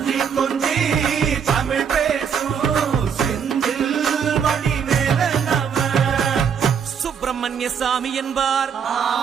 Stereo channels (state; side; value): quieter; left; 7.2 dB